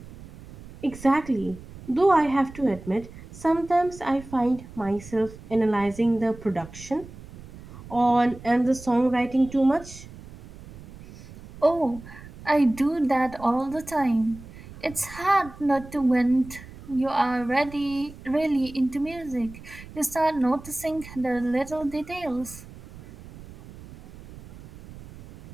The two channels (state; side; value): noise; right; rumble, 17 dB below the sound